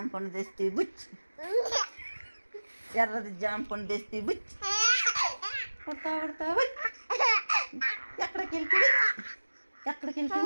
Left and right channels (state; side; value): inverted; both; correlation -1.00